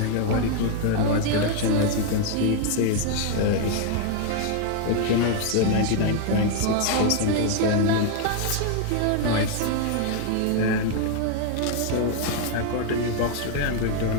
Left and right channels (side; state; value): both; different; correlation 0.00